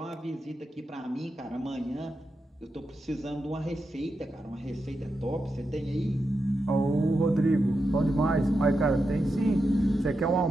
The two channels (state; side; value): normal; both; correlation 0.87